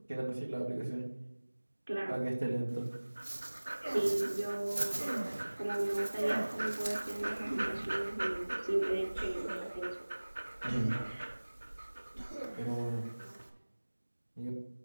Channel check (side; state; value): both; inverted; correlation -1.00